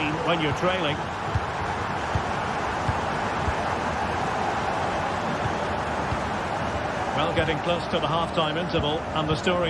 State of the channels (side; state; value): both; identical; correlation 1.00